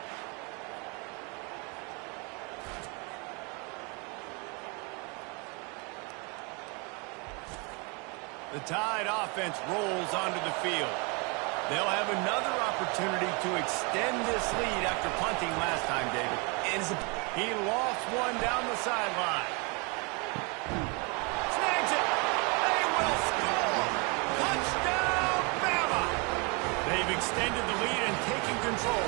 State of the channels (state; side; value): quieter; left; 31.5 dB